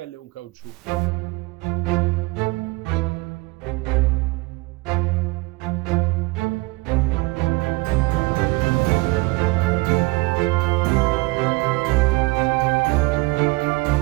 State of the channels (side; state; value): left; quieter; 23.9 dB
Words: e un caucciù.